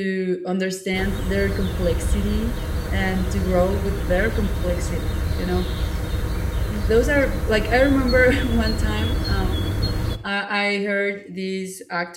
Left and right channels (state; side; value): identical; both; correlation 1.00